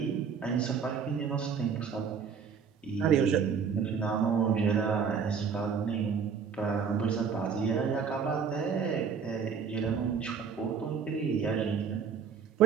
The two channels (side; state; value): left; quieter; 6.5 dB